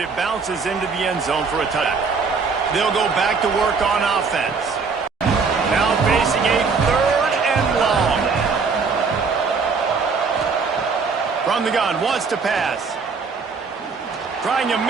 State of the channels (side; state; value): left; quieter; 5.0 dB